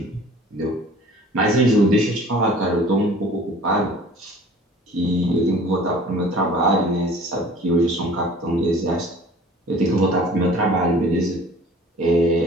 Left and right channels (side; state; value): both; normal; correlation 0.47